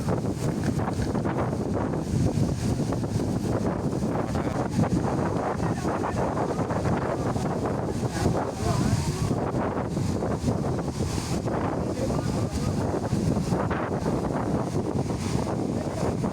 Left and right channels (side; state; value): both; identical; correlation 1.00